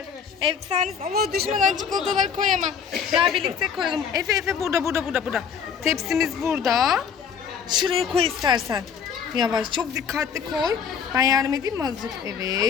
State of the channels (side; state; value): right; quieter; 7.0 dB